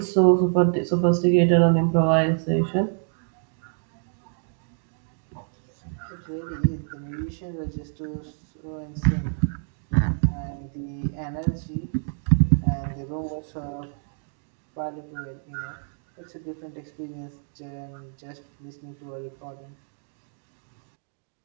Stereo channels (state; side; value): silent; left; 58 dB below the other